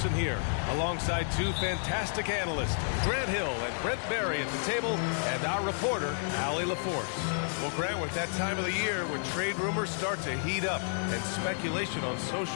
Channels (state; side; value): silent; right; digital silence